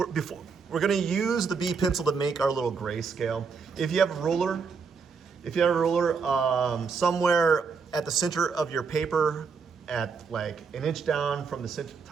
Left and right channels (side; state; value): left; quieter; 5.4 dB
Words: going to use the B pencil to make our little grayscale. If you have a ruler, somewhere at the center of your paper, at like an inch down from the